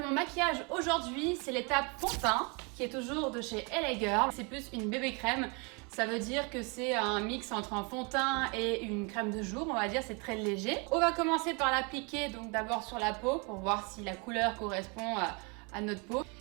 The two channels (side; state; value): left; quieter; 31.8 dB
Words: mon maquillage aujourd'hui, c'est l'étape fond de teint qui est toujours de chez LA Girl. C'est plus une bébé crème, ça veut dire que c'est un mix entre un fond de teint et une crème de jour, on va dire, c'est très léger. On va commencer par l'appliquer donc d'abord sur la peau pour voir si la couleur correspond à notre peau.